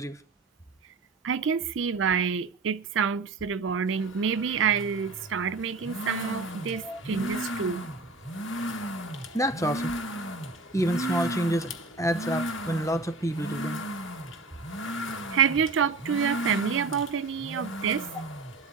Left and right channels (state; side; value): quieter; left; 3.8 dB